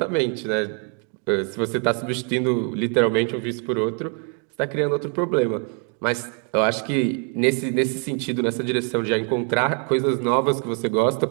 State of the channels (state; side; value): quieter; left; 39.1 dB